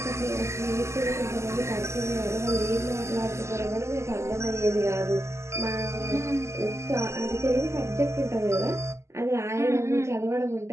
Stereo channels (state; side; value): late; left; 0.13 ms